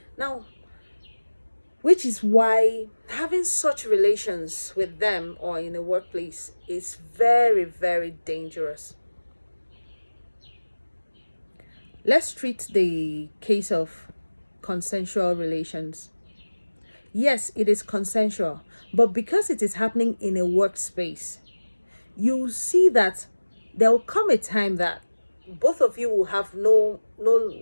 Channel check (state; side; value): inverted; both; correlation -1.00